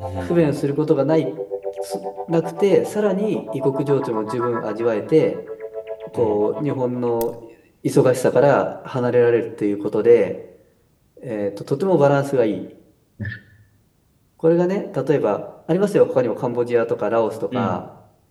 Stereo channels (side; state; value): both; identical; correlation 1.00